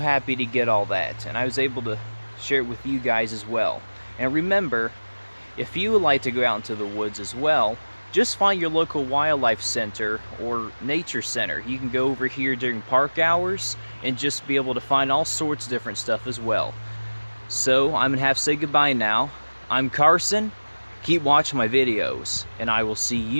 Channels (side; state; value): both; inverted; correlation -1.00